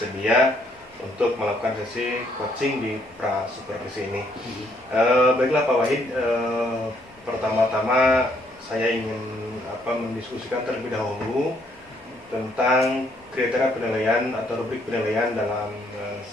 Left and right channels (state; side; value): normal; both; correlation 0.69